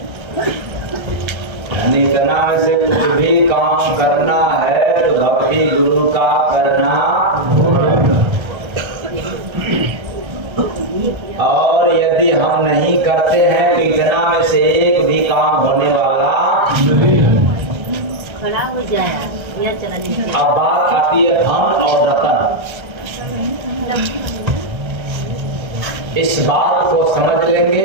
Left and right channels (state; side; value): late; left; 1.3 ms